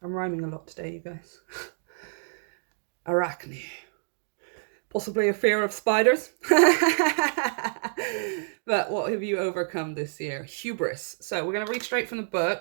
I'm rhyming a lot today, you guys. Arachne. Possibly a fear of spiders. But what have you overcome this year? Hubris. So we're going to read straight from the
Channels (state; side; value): silent; left; digital silence